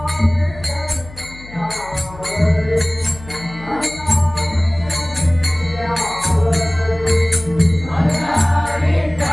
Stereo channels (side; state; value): left; noise; hum, 17 dB below the sound